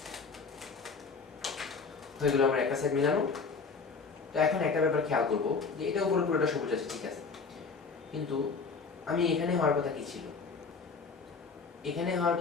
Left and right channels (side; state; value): right; quieter; 4.8 dB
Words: হয়ে গেল আমরা একটা সাইড মিলানো। তো এখন একটা ব্যাপার খেয়াল করবো যে এটা উপরে পুরোটা সবুজ আছে, ঠিক আছে, কিন্তু আমি এখানে হওয়ার কথা কি ছিল? এখানে হওয়ার